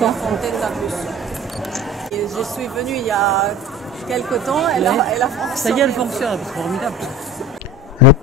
fontaine d'ablution. Et je suis venue il y a quelque temps, elle a fonctionné. Ça y est, elle fonctionne, c'est formidable. Le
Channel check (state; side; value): normal; both; correlation 0.37